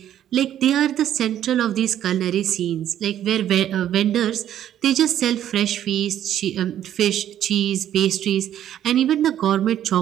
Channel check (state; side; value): quieter; left; 11.1 dB